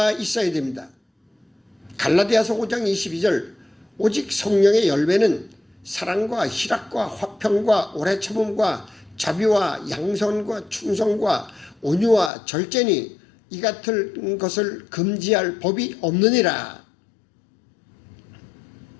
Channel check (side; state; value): right; drops out; at 12.3 s